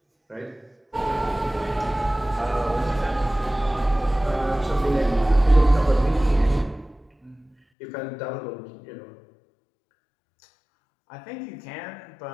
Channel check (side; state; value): right; drops out; at 7.6 s